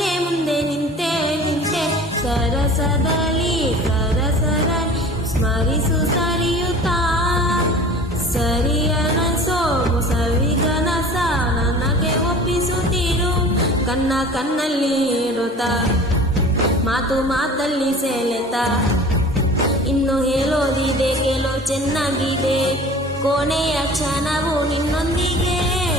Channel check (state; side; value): normal; both; correlation 0.42